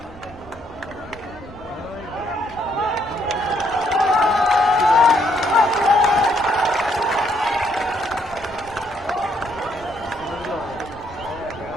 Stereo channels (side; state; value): right; noise; rumble, 22 dB below the sound